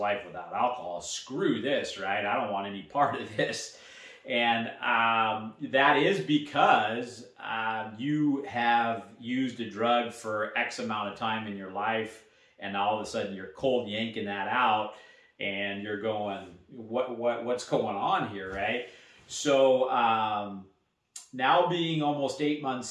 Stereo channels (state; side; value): identical; both; correlation 1.00